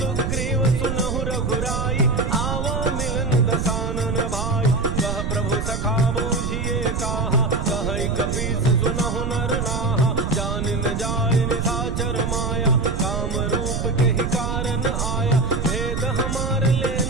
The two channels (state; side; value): noise; right; rumble, 1 dB below the sound